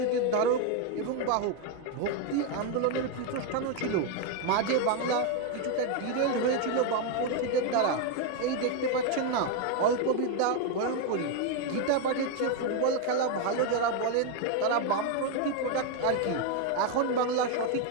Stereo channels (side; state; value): both; different; correlation 0.01